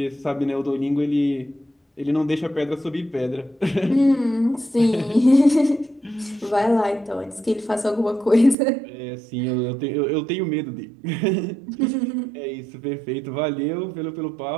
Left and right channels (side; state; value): left; drops out; at 8.6 s